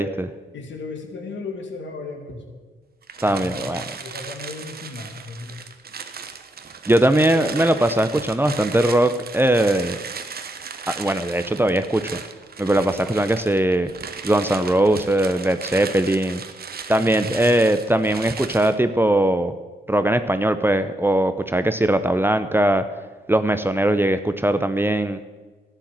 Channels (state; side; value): normal; both; correlation 0.81